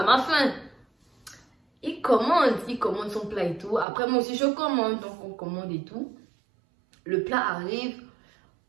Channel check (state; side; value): drops out; left; at 3.9 s